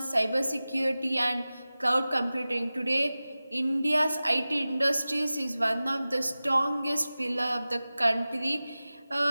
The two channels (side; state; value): both; inverted; correlation -0.97